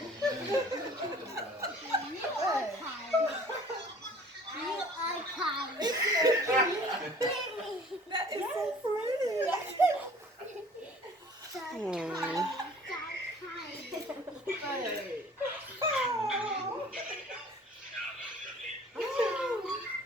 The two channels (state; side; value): normal; both; correlation 0.50